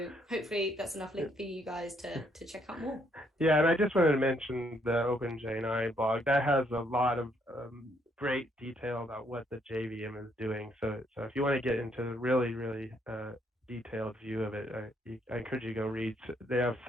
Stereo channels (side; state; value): both; normal; correlation 0.71